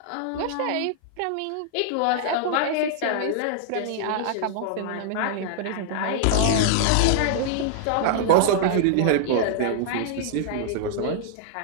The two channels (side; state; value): both; different; correlation -0.01